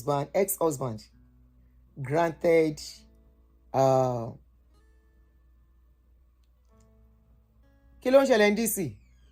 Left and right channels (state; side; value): identical; both; correlation 1.00